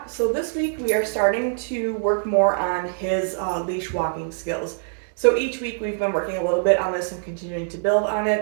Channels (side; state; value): left; silent; digital silence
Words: So this week we are starting to work more on his leash walking skills. So each week we've been working a little bit on this and continuing to build on